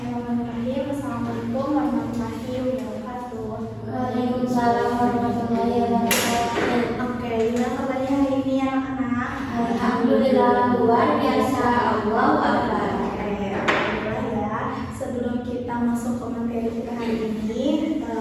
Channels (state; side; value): identical; both; correlation 1.00